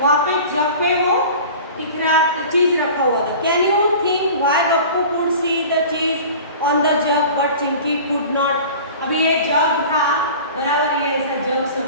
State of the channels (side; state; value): both; inverted; correlation -0.40